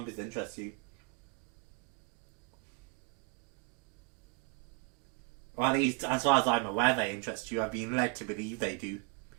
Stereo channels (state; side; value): quieter; left; 29.8 dB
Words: interest you. Or at least, as far as I'm aware, they interest you. I've been led to believe they do.